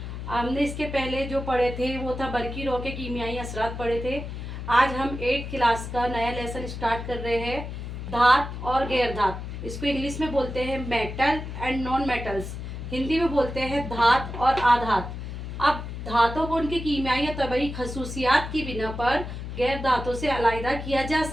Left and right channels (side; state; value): left; noise; hum, 7 dB below the sound